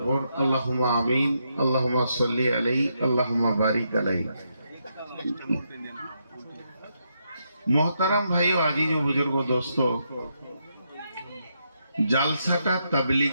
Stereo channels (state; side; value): inverted; both; correlation -0.80